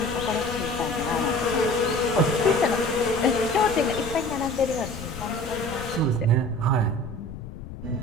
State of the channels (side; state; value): left; noise; rumble, 12 dB below the sound